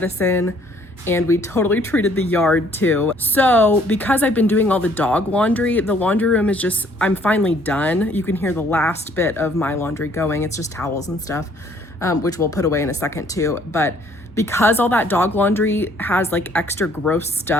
and we totally treated the yard too. So because I've been doing all the dog laundry, the laundry room is just, I'm finally done. You can hear the last bit of my laundry going. It's just towels and stuff, which we'll put away in a second too. But because all that dog laundry has like extra gross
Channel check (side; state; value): both; normal; correlation 0.62